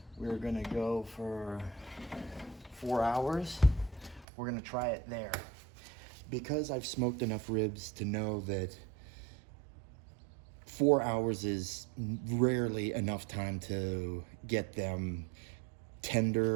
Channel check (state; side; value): drops out; left; at 4.2 s